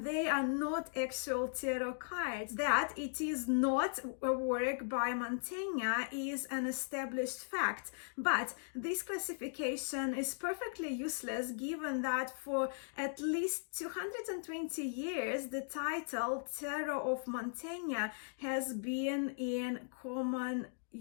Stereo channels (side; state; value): right; silent; digital silence